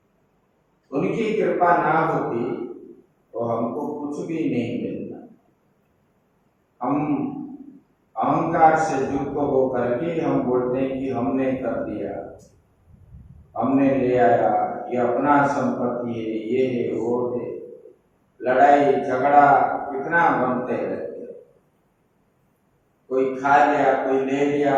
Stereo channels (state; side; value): identical; both; correlation 1.00